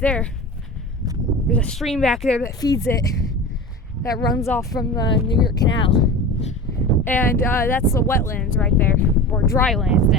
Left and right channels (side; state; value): both; normal; correlation 0.32